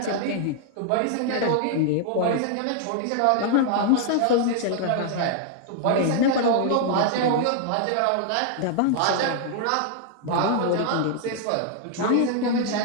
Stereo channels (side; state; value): both; different; correlation 0.00